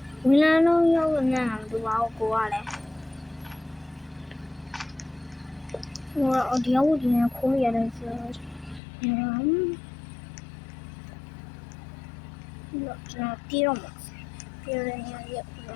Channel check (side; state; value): right; drops out; at 8.8 s